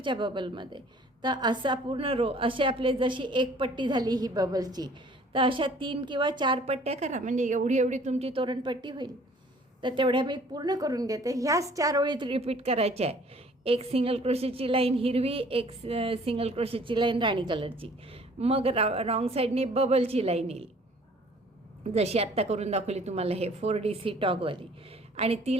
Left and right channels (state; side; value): normal; both; correlation 0.54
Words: बबलमध्ये. तर असा पूर्ण रो, असे आपले जशी एक पट्टी झाली ही बबलची, तर अशा 3 किंवा 4 पट्ट्या करा, म्हणजे एवढी तुमची तोरणपट्टी होईल. तर तेवढ्या मी पूर्ण करून घेते. ह्याच 4 ओळीत रिपीट करायच्या आहे. एक सिंगल क्रोशेची लाईन हिरवी, एक सिंगल क्रोशेची लाईन राणी कलरची, मग रॉंग साईडने बबलची लाईन येईल जशी आत्ता करून दाखवली तुम्हाला हे 4DC टॉगवाली. आणि ती